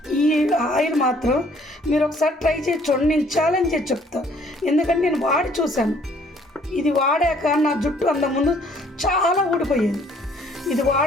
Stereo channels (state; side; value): normal; both; correlation 0.61